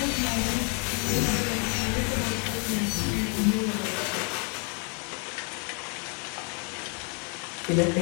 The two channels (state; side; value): quieter; right; 38.0 dB